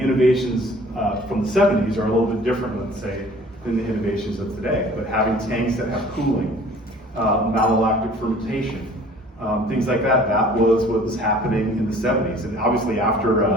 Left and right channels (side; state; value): both; normal; correlation 0.50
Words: innovations from the 70s are a little bit different, let's say, than the innovations of today. But having tanks that have cooling, malolactic fermentation, things like that, that was what was happening in the 70s. And obviously after